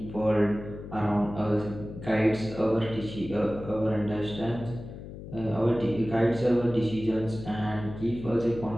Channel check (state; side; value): noise; left; hum, 12 dB below the sound